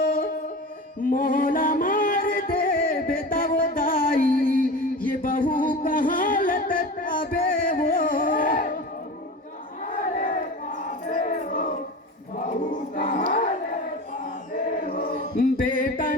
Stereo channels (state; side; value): normal; both; correlation 0.31